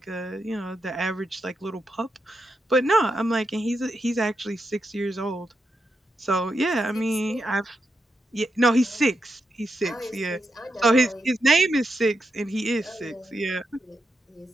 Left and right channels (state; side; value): normal; both; correlation 0.84